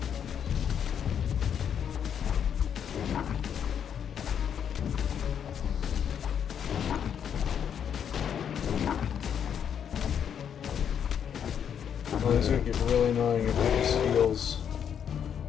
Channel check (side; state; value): right; quieter; 8.3 dB